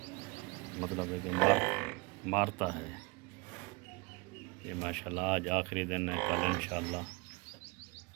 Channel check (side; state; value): left; quieter; 26.6 dB